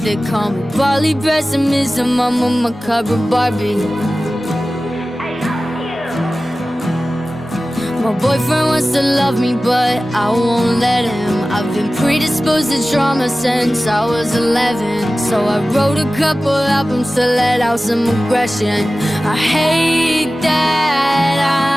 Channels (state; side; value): normal; both; correlation 0.96